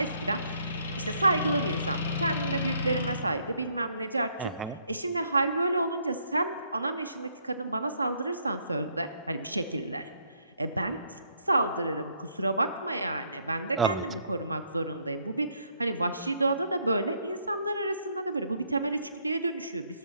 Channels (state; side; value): inverted; both; correlation -0.69